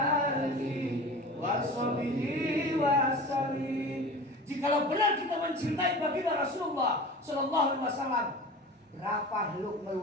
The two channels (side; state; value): both; normal; correlation 0.36